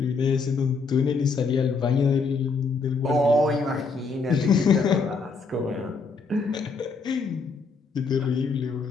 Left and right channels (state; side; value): quieter; right; 4.5 dB